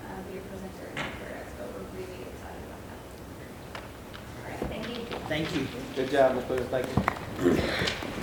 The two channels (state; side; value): identical; both; correlation 1.00